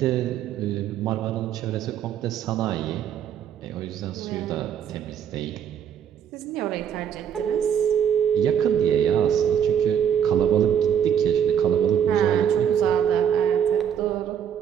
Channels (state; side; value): quieter; left; 8.8 dB